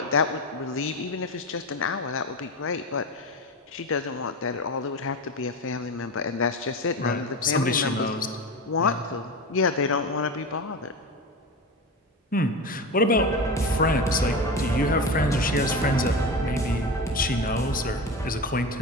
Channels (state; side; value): normal; both; correlation 0.24